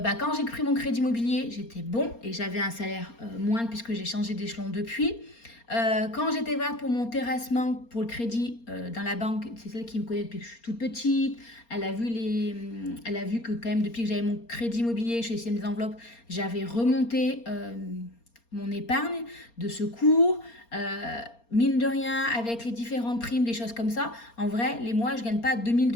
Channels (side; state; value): right; late; 4.3 ms